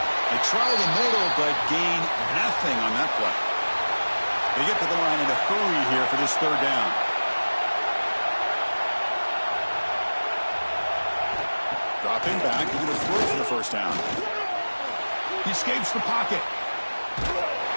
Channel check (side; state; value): both; inverted; correlation -1.00